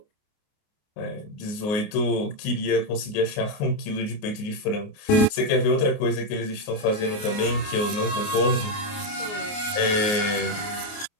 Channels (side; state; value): right; late; 28 ms